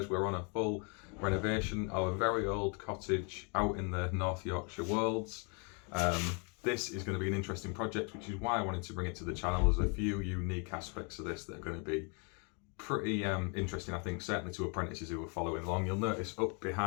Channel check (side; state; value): right; quieter; 35.8 dB